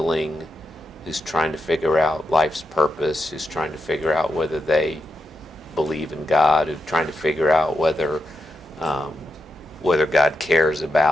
who's trying to figure out life's purpose, who's trying to figure out whether they believe in God, who's trying to figure out whether God cares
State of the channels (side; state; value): both; normal; correlation 0.87